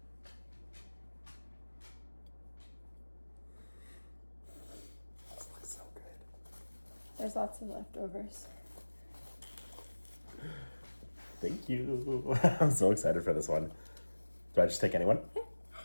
This looks so good. There's lots of leftovers. Thank you. I'm so excited for this one. Do I just take anyone? Yeah.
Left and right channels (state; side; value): inverted; both; correlation -1.00